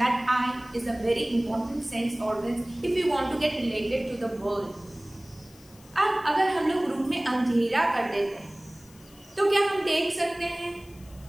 that eye is a very important sense organ if you want to get related to the world. अब अगर हम लोग रूम में अंधेरा कर देते हैं तो क्या हम देख सकते हैं?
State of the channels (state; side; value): noise; left; hiss, 25 dB below the sound